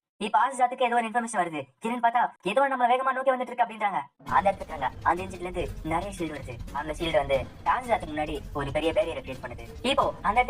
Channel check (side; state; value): both; identical; correlation 1.00